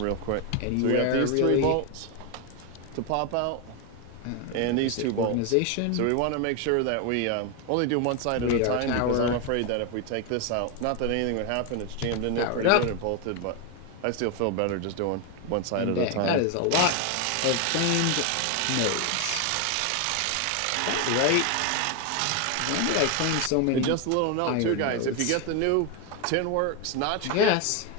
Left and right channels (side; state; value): both; different; correlation 0.01